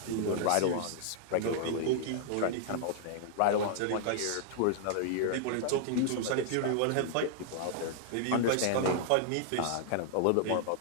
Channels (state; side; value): different; both; correlation -0.01